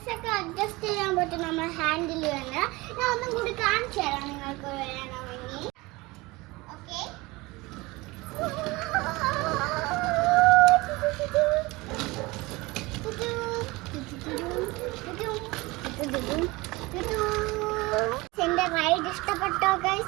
അഡ്ജസ്റ്റ് ചെയ്യാൻ പറ്റും നമ്മൾ ഹാൻഡിൽ ചെയ്യുന്ന. ഞാൻ ഒന്നും കൂടി കാണിച്ചു തരാം നിങ്ങൾക്ക് വേണമെങ്കിൽ. ഓക്കെ, എന്റെ റൈഡ് ഇഷ്ടപ്പെട്ടോ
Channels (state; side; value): quieter; left; 22.4 dB